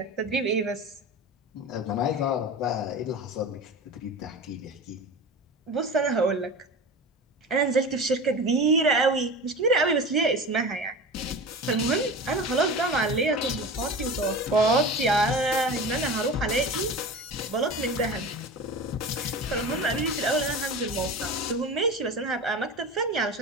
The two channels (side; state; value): both; normal; correlation 0.31